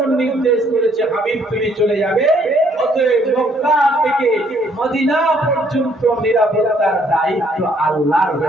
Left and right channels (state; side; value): normal; both; correlation 0.65